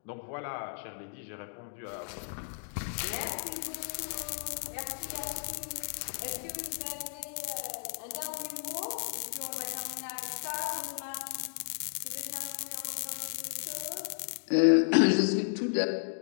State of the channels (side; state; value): right; silent; digital silence